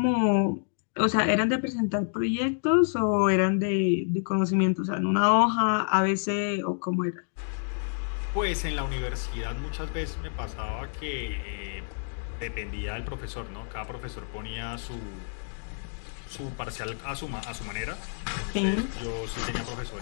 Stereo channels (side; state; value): right; silent; digital silence